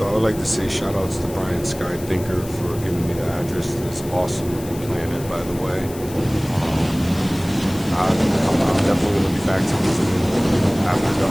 would like to say shout outs to Brian Sky Thinker for giving me the address to this awesome looking planet, by the way. I'm definitely going to be back to visiting after the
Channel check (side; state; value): left; noise; hiss, 16 dB below the sound